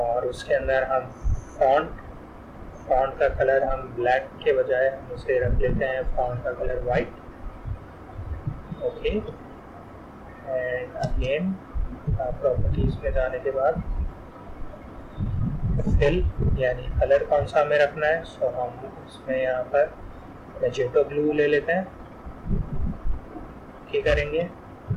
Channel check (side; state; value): both; identical; correlation 1.00